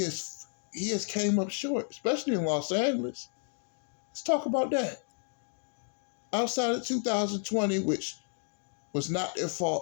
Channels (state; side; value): silent; right; 57 dB below the other